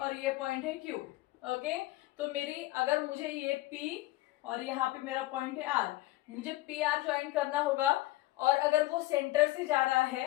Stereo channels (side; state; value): right; quieter; 17.8 dB